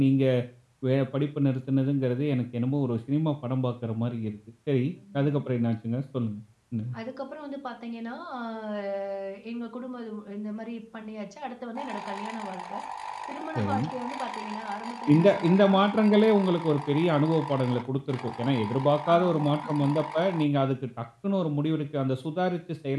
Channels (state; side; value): identical; both; correlation 1.00